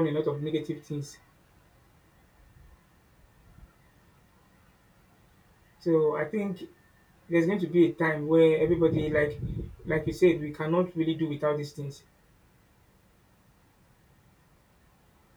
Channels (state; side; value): identical; both; correlation 1.00